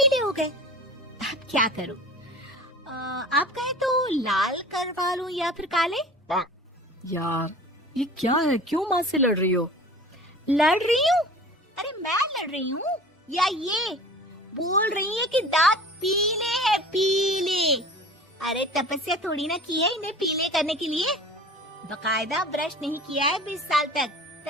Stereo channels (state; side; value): normal; both; correlation 0.41